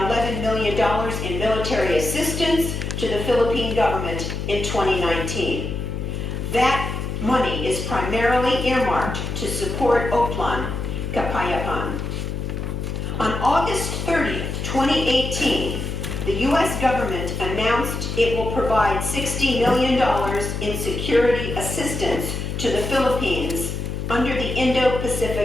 million in military assistance to the Philippine government in 2019. That money is primarily earmarked to support Oplan Kapayapan. On August 30th, 2018, the U.S. government announced it will provide $60 million in security assistance to the Philippines under the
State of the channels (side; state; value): left; noise; hum, 4 dB below the sound